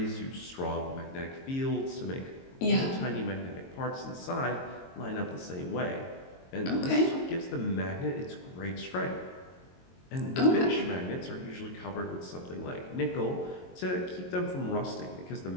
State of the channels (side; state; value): right; late; 22 ms